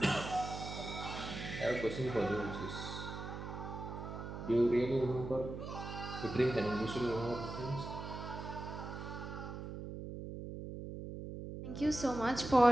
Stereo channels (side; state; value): right; noise; hum, 8 dB below the sound